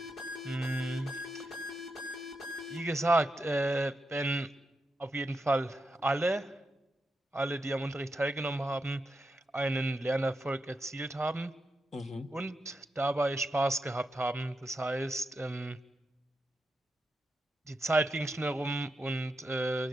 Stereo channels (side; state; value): both; normal; correlation 0.86